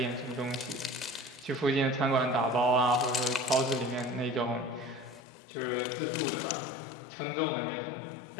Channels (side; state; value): right; drops out; at 5.2 s